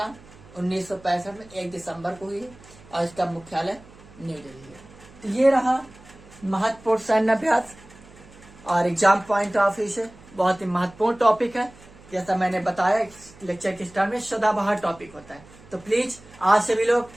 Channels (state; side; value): noise; right; hum, 23 dB below the sound